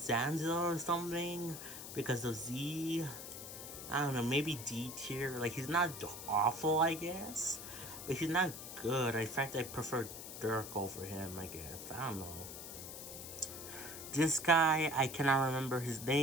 or something because of Z. I don't know, maybe D tier. Like, he's not awful, I guess, but he's not good. In fact, I prefer Dirk over him, I guess. I don't know. This guy, I cannot remember his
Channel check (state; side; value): noise; left; hiss, 10 dB below the sound